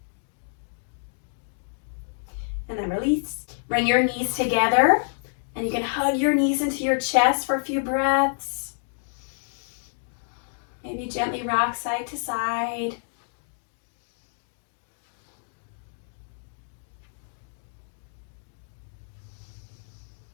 And then release. Bring your knees together, and you can hug your knees into your chest for a few breaths. Maybe gently rock side to side.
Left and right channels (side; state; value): right; silent; digital silence